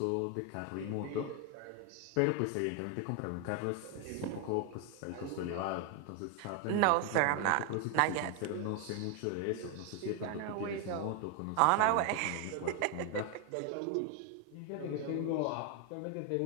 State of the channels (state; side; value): different; both; correlation 0.01